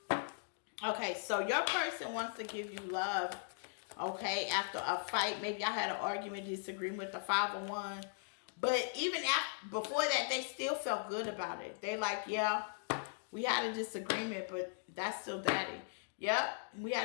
Okay, so your person wants to give you love, okay, after a fight. Maybe I had an argument, disagreement with the 5 of Wands. But even after, before that, they still felt good about it. They like, yeah, we had a disagreement, but that's still Daddy. Yep, we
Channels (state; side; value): silent; right; digital silence